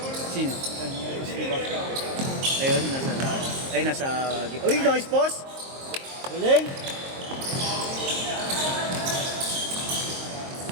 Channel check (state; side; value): late; left; 22 ms